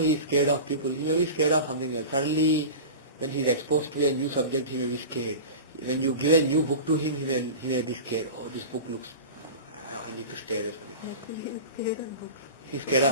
is scared of people. He may be scared of something else. Suddenly, when he is exposed to a new subject, he may be scared. When you give a new book to him, he may be scared. Oh, this book looks, I need to stay away from it. He's scared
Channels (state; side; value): inverted; both; correlation -0.32